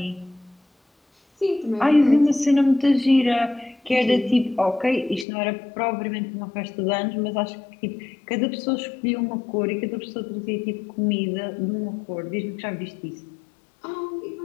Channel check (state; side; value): drops out; right; at 5.2 s